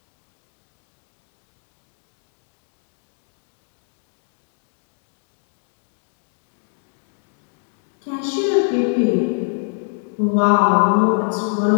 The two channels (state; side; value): silent; right; 59 dB below the other